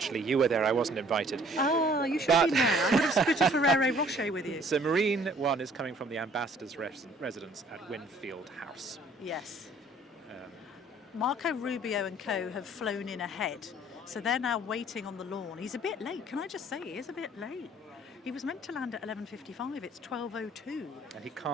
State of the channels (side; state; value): both; normal; correlation 0.57